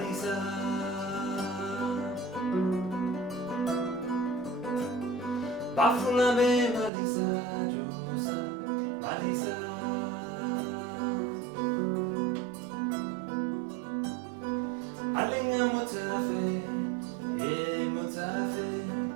Bafulabe, Malisa, Josa, Malisa. Alinga mutafe, ye mutafe.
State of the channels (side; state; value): left; drops out; at 6.9 s